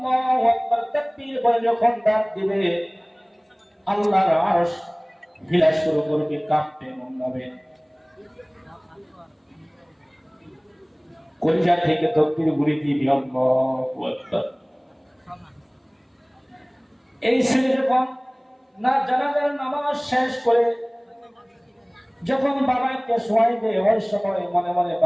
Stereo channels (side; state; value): both; identical; correlation 1.00